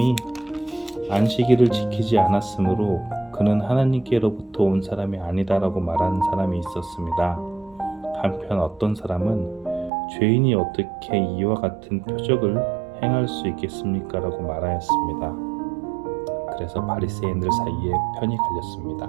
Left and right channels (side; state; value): left; drops out; at 9.9 s